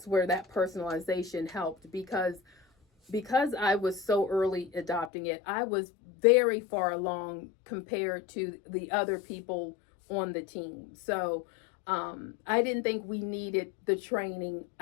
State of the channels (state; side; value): drops out; right; at 5.1 s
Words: where that personalization helped because I was so early adopting it, I was very far along compared to the other people on the team. So I didn't think we needed the training.